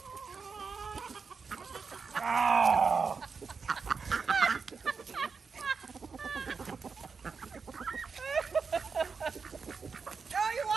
Oh! Oh, you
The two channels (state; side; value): quieter; left; 5.2 dB